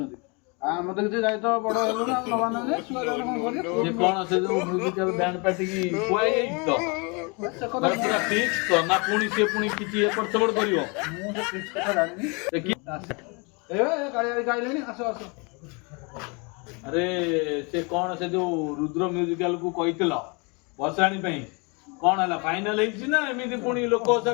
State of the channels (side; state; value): right; quieter; 31.2 dB